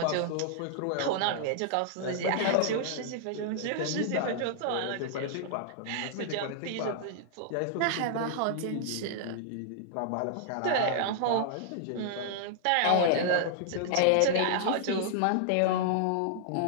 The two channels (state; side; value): different; both; correlation -0.01